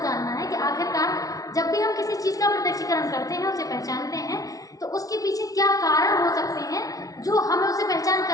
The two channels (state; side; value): late; right; 0.18 ms